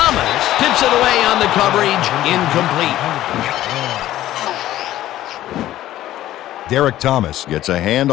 tips it away on the coverage, incomplete. Derek Thomas gets a hand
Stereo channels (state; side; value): quieter; right; 13.9 dB